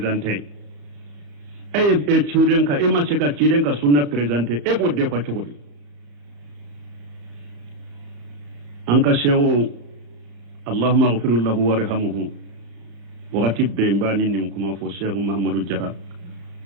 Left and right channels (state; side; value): late; left; 35 ms